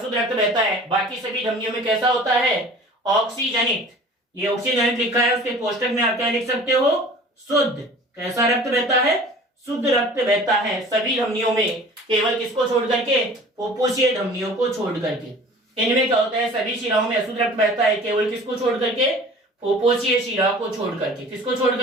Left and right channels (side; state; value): both; normal; correlation 0.44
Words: रक्त बहता है, बाकी सभी धमनियों में कैसा होता है? ऑक्सीजनित। ये ऑक्सीजनित लिखा है, उसके कोष्टक में आप क्या लिख सकते हो? शुद्ध। कैसा रक्त बहता है? शुद्ध रक्त बहता है सभी धमनियों में, केवल किसको छोड़ करके? फुफ्फुसीय धमनियों को छोड़ करके। इनमें क्या होता है? सभी शिराओं में अशुद्ध रक्त बहता है, केवल किसको छोड़ करके? फुफ्फुसीय शिरा को छोड़ करके। किसको छोड़